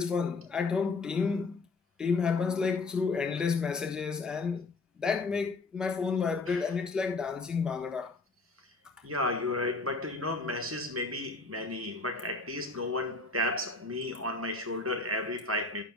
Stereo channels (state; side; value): quieter; right; 3.8 dB